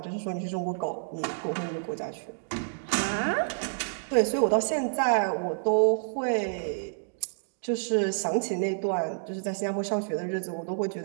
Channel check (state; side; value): silent; left; digital silence